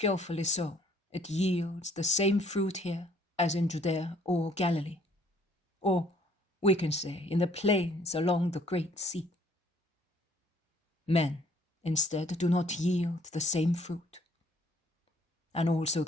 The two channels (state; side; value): normal; both; correlation 0.61